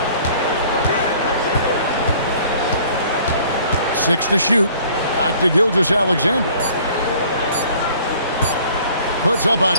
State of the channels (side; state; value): both; inverted; correlation -0.53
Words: Six to shoot. Back to Gilgeous-Alexander. Puts up a